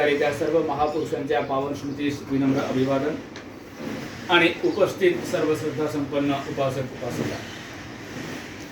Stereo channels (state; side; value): identical; both; correlation 1.00